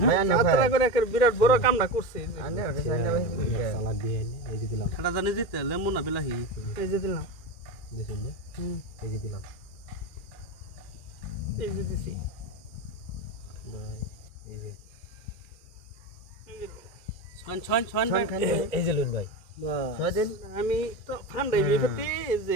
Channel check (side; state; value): right; late; 2.4 ms